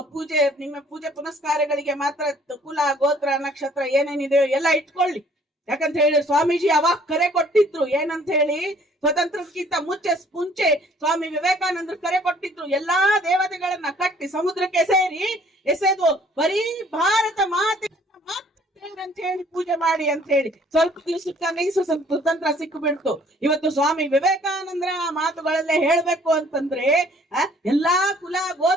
ಪೂಜೆ ಪುನಸ್ಕಾರಗಳಿಗೆ ಮಾತ್ರ ಕುಲ ಗೋತ್ರ ನಕ್ಷತ್ರ ಏನೇನಿದೆಯೋ ಎಲ್ಲ ಇಟ್ಕೊಳ್ಳಿ. ಯಾಕಂತ ಹೇಳಿ ಸ್ವಾಮೀಜಿ ಅವಾಗ ಕರೆ ಕೊಟ್ಟಿದ್ರು, ಏನಂತ ಹೇಳಿ ಸ್ವತಂತ್ರಕ್ಕಿಂತ ಮುಂಚೆ ಸ್ವಾಮಿ ವಿವೇಕಾನಂದರು ಕರೆ ಕೊಟ್ಟಿದ್ರು, ಎಲ್ಲಾ ದೇವತೆಗಳನ್ನ ಕಟ್ಟಿ ಸಮುದ್ರಕ್ಕೆ ಎಸೆದು ಬರೀ ಭಾರತ ಮಾತೆ ಅಂತ ಹೇಳಿ ಪೂಜೆ ಮಾಡಿ ಅಂತ ಹೇಳಿ. ಸ್ವಲ್ಪ ದಿವಸಕ್ಕೆ ಸ್ವತಂತ್ರ ಸಿಕ್ಕಿಬಿಡ್ತು. ಇವತ್ತು ಸ್ವಾಮಿ ವಿವೇಕಾನಂದರ ಮಾತುಗಳಲ್ಲೇ ಹೇಳ್ಬೇಕು ಅಂತಂದ್ರೆ ಎಲ್ಲಾ ಕುಲ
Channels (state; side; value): normal; both; correlation 0.58